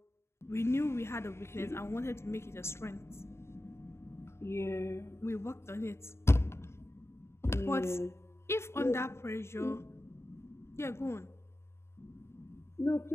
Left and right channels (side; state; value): right; late; 0.13 ms